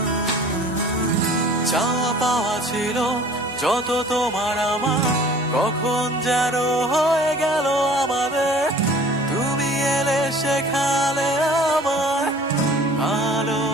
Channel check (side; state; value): both; normal; correlation 0.48